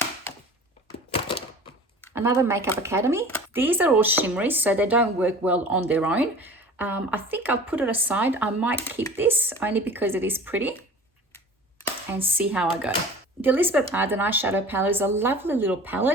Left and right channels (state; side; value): normal; both; correlation 0.42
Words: Another Makeup Academy. These are all shimmery, so they don't work well on their own. I think I'll put it aside. I might keep this only because it is pretty, and see how I go. The Elizabeth Arden eyeshadow palette is a lovely little